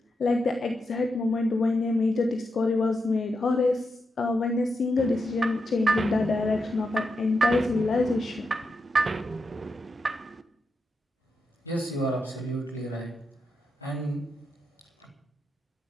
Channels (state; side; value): normal; both; correlation 0.85